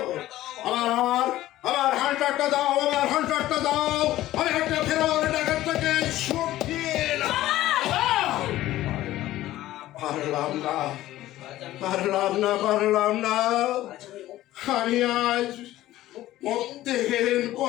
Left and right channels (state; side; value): quieter; right; 15.1 dB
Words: আমার আমার আমার হান্টারটা দাও, আমার হান্টারটা দাও। আমি একটা ফেরার ডাকাতটাকে শুকিয়ে পারলাম না পারলাম না পারলাম না। আমি আজ মধ্যহীন